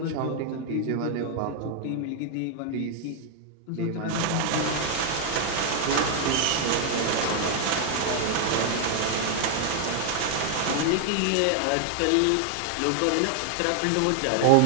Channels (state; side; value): different; both; correlation 0.00